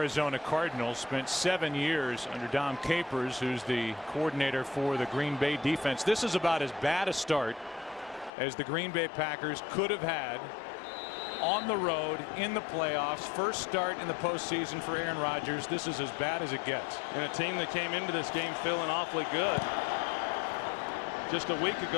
Cardinals, spent 7 years under Dom Capers, who's the coordinator for the Green Bay defense. This is about as bad a start as the Green Bay Packers could have had on the road in the playoffs. First start in the postseason for Aaron Rodgers. This is as bad as it gets. And a team that came into this game feeling awfully good just a week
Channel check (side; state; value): right; drops out; at 8.3 s